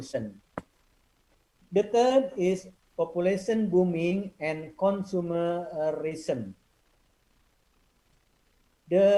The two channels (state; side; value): identical; both; correlation 1.00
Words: The third is population booming and consumerism.